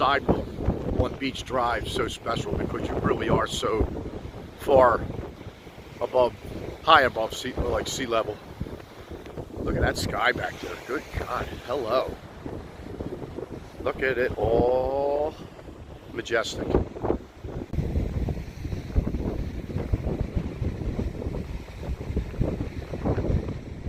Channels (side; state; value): both; identical; correlation 1.00